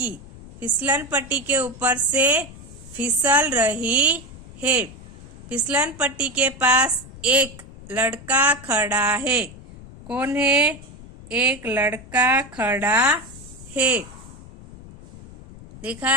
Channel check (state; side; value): noise; left; rumble, 18 dB below the sound